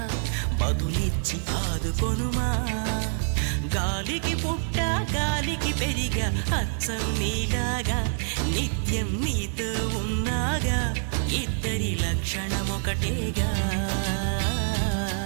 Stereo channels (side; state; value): left; silent; digital silence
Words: బదులిచ్చి ఆదుకొనుమా. గాలికి పుట్ట గాలికి పెరిగా అచ్చం నీలాగా, నిత్యం నీతో ఉన్నాగా, ఇద్దరి లక్షణం ఒకటేగా.